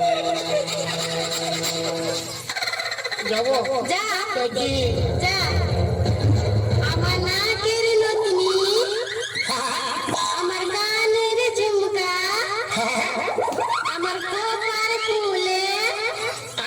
যাবো যা যাচ্ছি যা। আমার নাকের নথনি, আমার কানের ঝুমকা,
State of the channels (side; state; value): both; identical; correlation 1.00